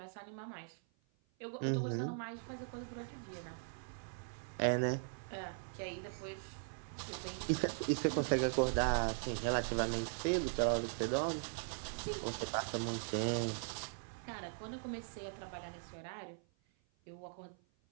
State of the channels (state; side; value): silent; left; 51 dB below the other